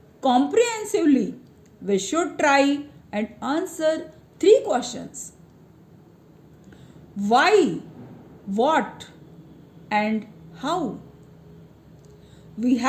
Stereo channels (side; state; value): both; identical; correlation 1.00